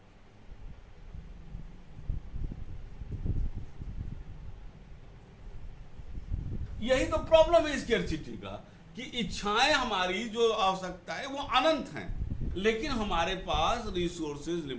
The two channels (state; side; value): identical; both; correlation 1.00